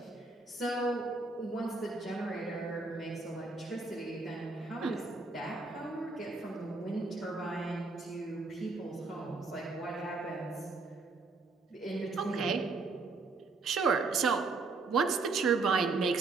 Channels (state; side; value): quieter; left; 3.9 dB